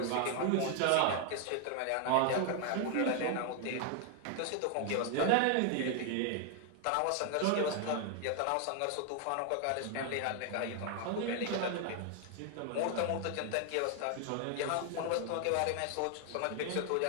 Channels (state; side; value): different; both; correlation 0.00